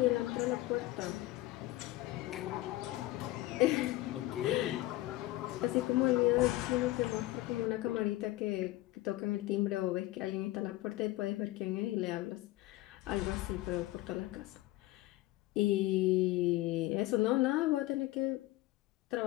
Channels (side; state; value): right; quieter; 17.5 dB